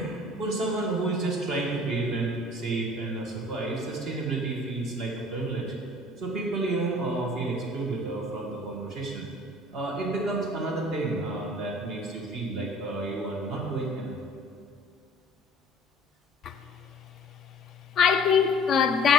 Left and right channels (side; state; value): both; normal; correlation 0.49